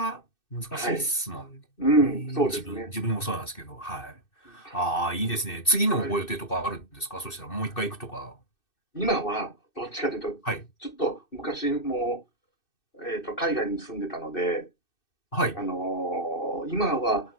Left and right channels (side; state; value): right; late; 2.6 ms